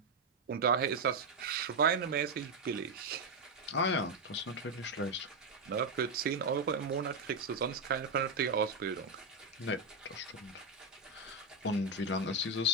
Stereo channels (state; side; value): quieter; left; 3.3 dB